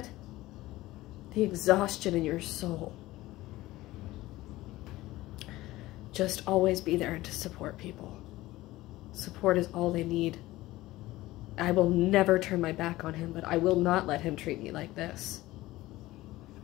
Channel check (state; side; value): quieter; right; 17.6 dB